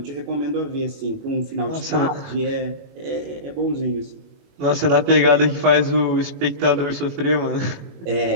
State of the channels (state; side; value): late; left; 21 ms